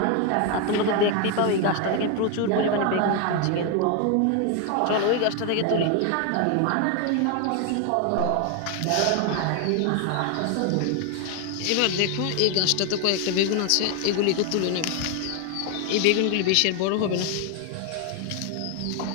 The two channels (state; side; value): different; both; correlation 0.01